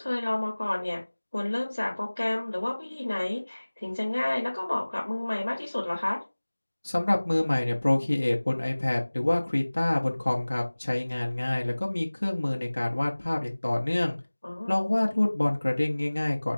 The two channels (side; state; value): both; inverted; correlation -1.00